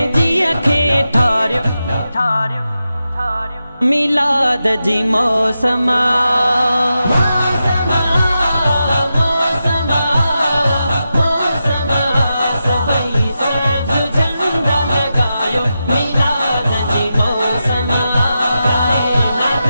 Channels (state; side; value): inverted; both; correlation -0.89